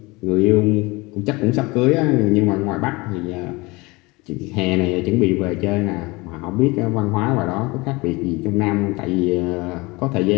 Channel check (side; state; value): right; quieter; 24.0 dB